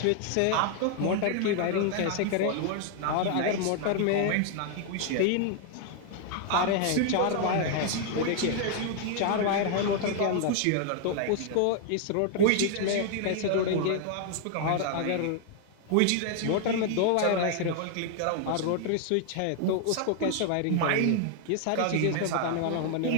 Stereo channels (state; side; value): different; both; correlation 0.00